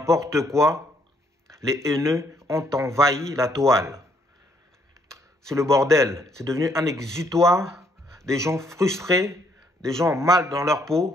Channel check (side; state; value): both; normal; correlation 0.69